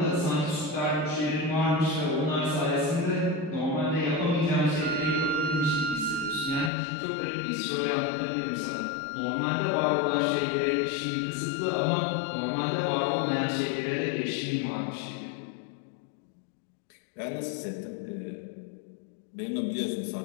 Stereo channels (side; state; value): right; drops out; at 6.7 s